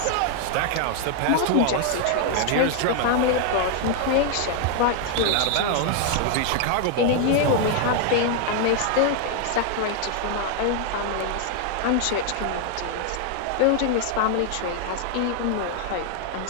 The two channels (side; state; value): both; different; correlation 0.00